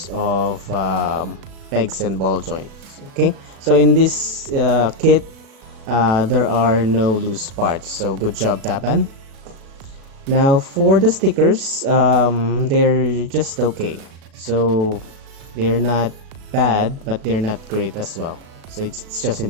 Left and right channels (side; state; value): left; late; 36 ms